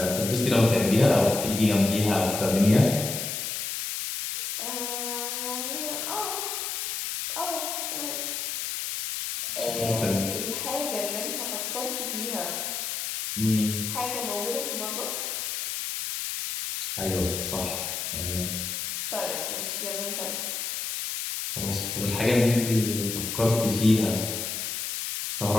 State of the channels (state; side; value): noise; left; hiss, 3 dB below the sound